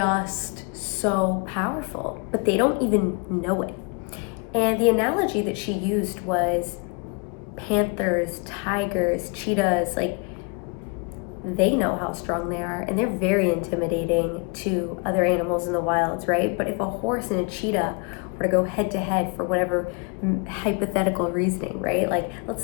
so powerful, but they don't even know it. And the analogy that she used was panthers, tigers, cheetahs. Like, they know how strong they are, and they're very intimidating to other animals in the wilds, right? But if a horse and a cheetah were to go head to head for whatever hypothetical reasoning, right? Like, let's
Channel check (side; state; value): right; quieter; 33.1 dB